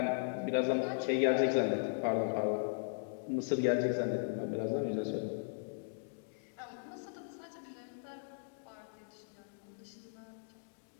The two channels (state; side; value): silent; right; digital silence